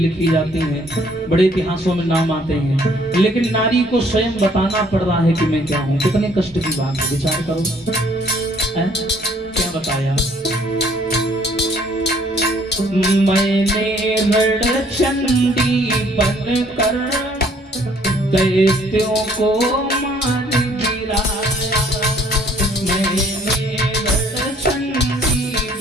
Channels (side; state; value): both; normal; correlation 0.61